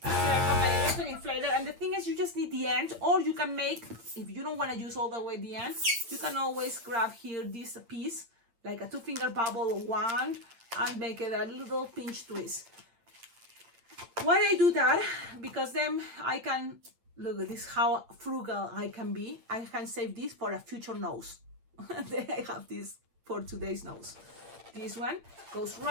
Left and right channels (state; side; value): late; left; 8.8 ms